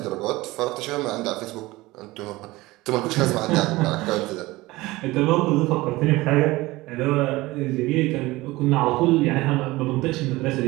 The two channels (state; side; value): quieter; left; 19.9 dB